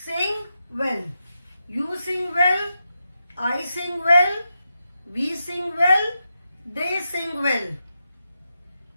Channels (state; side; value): inverted; both; correlation -0.87